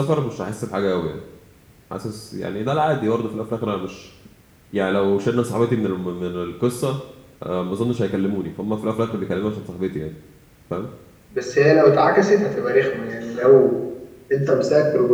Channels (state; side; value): identical; both; correlation 1.00